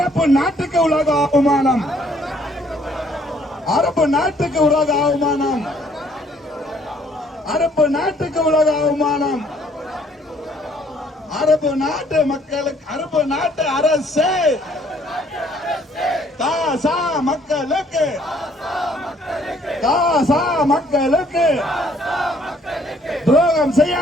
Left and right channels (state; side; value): normal; both; correlation 0.63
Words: நாட்டுக்கு உலக அவமானம் அரபு நாட்டுக்கு உலக அவமானம் அரபு நாட்டுக்கு உலக அவமானம் அரபு நாட்டு மக்களுக்கு அரபு நாட்டு அரசு காசா மக்களுக்கு காசா மக்களுக்கு துரோகம்